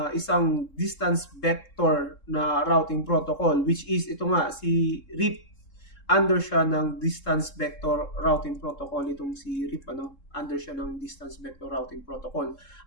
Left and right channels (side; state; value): right; late; 3.7 ms